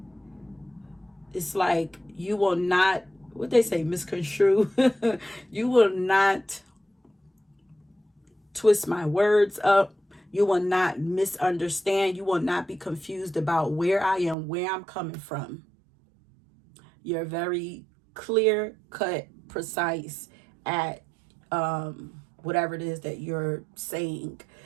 It's like you will not, what they say, misconstrue. You will not twist my words up. You will not misunderstand. You will not be confused about where I am, where I'm coming from. You're very clear cut, precise at whatever it is that you're saying.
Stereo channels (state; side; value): drops out; left; at 14.4 s